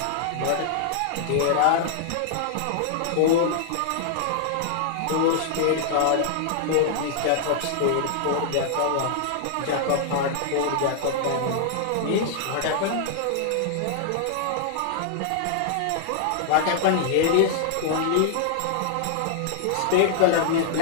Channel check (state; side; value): different; both; correlation -0.01